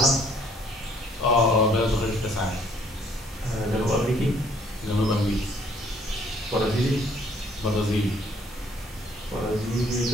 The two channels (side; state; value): both; normal; correlation 0.62